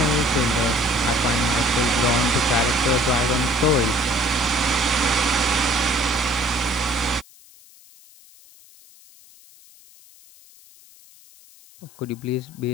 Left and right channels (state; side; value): noise; left; hiss, 25 dB below the sound